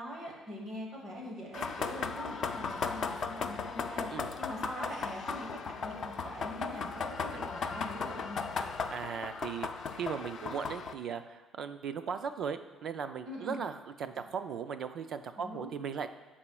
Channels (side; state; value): both; normal; correlation 0.64